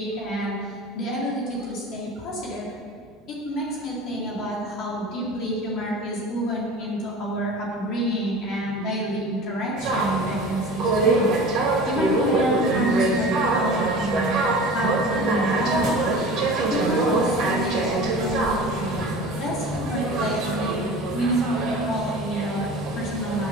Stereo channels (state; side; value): normal; both; correlation 0.37